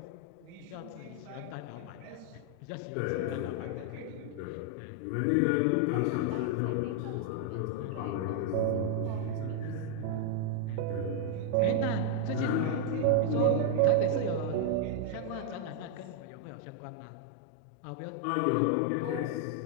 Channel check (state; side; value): different; both; correlation 0.00